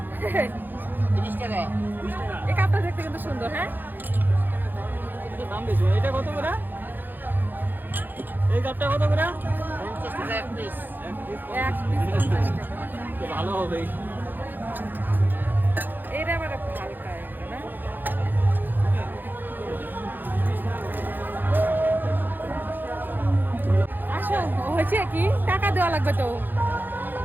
30 টাকা। এই কাপটা দেখতে কিন্তু সুন্দর। হ্যাঁ দাম বেশি। এটা কত করে? এই কাপটা কত করে? 50 টাকা এক পিস। এক পিস 50 টাকা। ভালো হবে। এটা আবার হালকা না? আসো, হয়েছে কি টাকা দেওয়া লাগবে তো।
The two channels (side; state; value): left; late; 0.090 ms